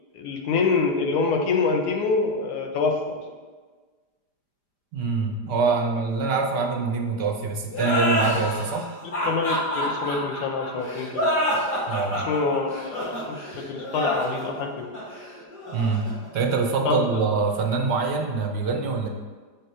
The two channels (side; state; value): right; late; 4.9 ms